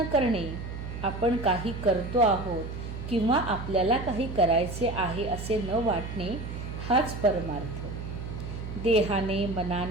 करणे, आपण काही करतो आहोत किंवा आपल्याला काही करायचे आहे असे न वाटणे हाच परमार्थ. देहाने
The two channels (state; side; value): noise; right; hum, 8 dB below the sound